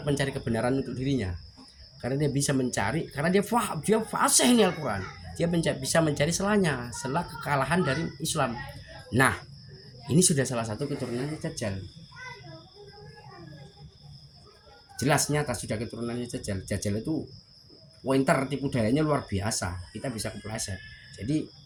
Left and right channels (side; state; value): both; identical; correlation 1.00